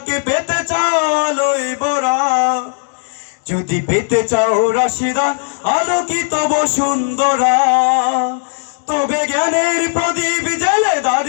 পেতে চাও আলোয় ভরা, যদি পেতে চাও রাশিদা আলোকিত বসুন্ধরা, তবে জ্ঞানের প্রদীপ জেলে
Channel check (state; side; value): silent; right; 69 dB below the other